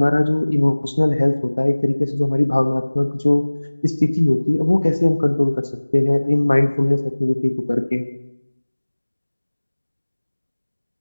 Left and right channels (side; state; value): both; inverted; correlation -1.00